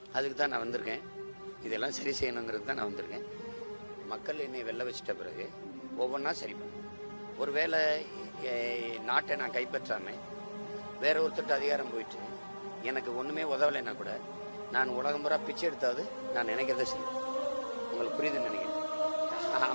அதுக்கு தான் நான் வந்திருக்கேன். இதெல்லாம் சரி செய்யணுங்கிறது தான் நான் வந்திருக்கேன். மக்கள் என்னை வெல்ல வச்சிட்ட பிறகு ஒவ்வொன்றா சரி பண்ணேன். ஒருவேளை நாட்டை நான் கைப்பற்றாமல் வேற ஒருத்தருக்கு அதிகாரம் போயிட்டு எனக்கு ஒன்றுமே உதவலைன்னா கூட நான் உலகம் பூரா பிச்சை எடுத்தாவது நான் நினைக்கிறத செய்வேன். உங்களுக்கு புரியுதுன்னு நினைக்கிறேன்.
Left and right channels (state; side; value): inverted; both; correlation -1.00